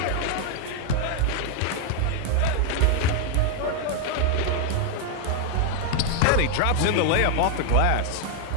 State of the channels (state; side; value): different; both; correlation 0.00